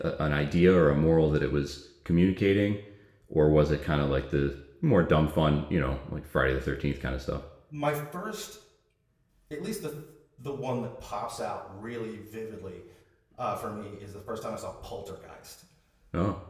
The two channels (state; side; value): identical; both; correlation 1.00